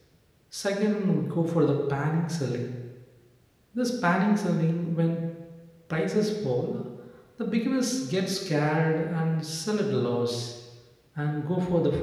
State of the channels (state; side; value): identical; both; correlation 1.00